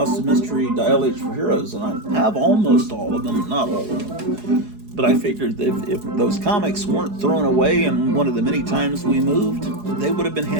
of Mystery Dial H for Heroes, and I have almost all of them, not all of them. But I figured that if those comics weren't thrown away in one of the many times we moved, they would have been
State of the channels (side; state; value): left; late; 4.8 ms